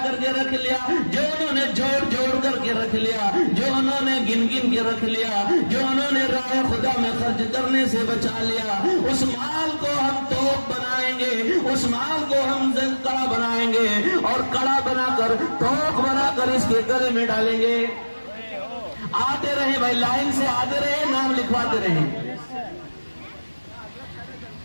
کر کے رکھ لیا، جو انہوں نے جوڑ کر کے رکھ لیا، جو انہوں نے گن کے رکھ لیا، جو انہوں نے راہ خدا میں خرچ کرنے سے بچا لیا، اس مال کو ہم توق بنائیں گے، اس مال کو ہم کڑا بنائیں گے، اور کڑا بنا کر، توق بنا کر اس کے گلے میں ڈالیں گے۔ آتے رہیں بھائی، لائن سے آتے رہیں، نام لکھواتے رہیں،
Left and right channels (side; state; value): both; inverted; correlation -1.00